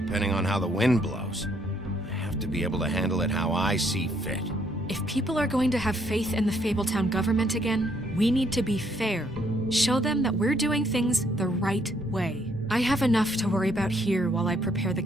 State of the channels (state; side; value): normal; both; correlation 0.70